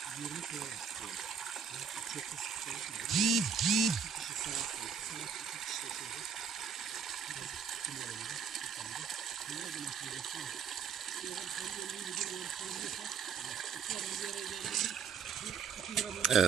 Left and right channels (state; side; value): quieter; left; 6.5 dB